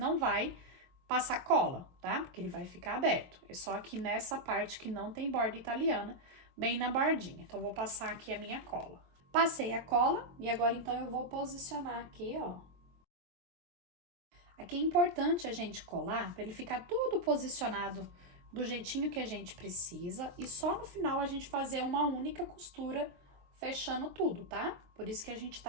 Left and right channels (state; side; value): late; left; 23 ms